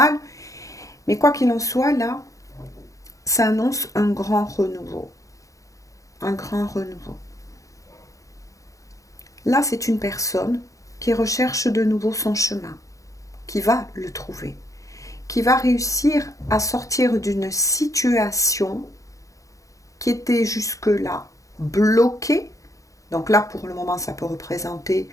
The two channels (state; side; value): late; right; 0.16 ms